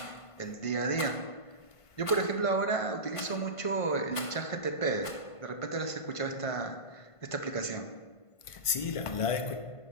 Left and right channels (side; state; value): right; late; 1.5 ms